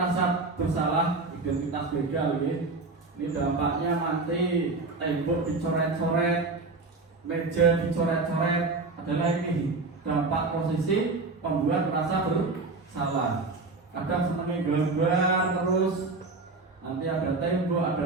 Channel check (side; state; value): left; quieter; 3.6 dB